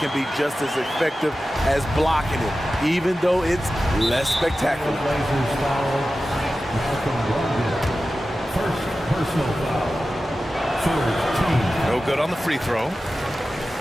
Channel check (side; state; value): both; normal; correlation 0.94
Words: can be just as effective as blocking it, even though it's less spectacular. First personal foul. Third team. No good on the free throw.